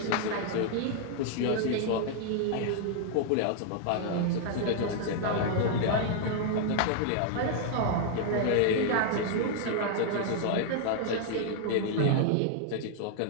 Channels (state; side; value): different; both; correlation -0.01